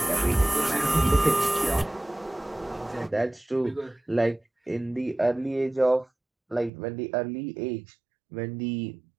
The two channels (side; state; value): left; drops out; at 6.7 s